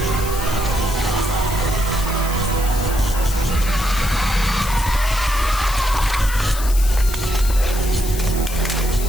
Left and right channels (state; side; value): noise; left; hiss, 10 dB below the sound